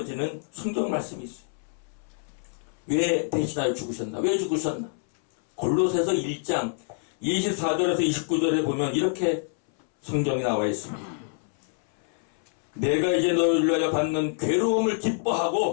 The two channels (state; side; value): silent; right; 60 dB below the other